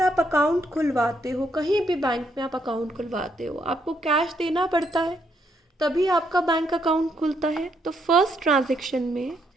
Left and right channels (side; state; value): both; normal; correlation 0.74